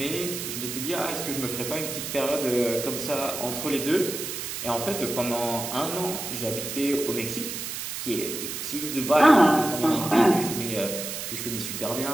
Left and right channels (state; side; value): noise; right; hiss, 6 dB below the sound